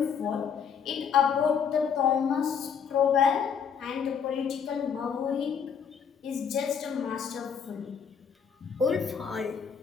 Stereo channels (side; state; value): right; quieter; 7.1 dB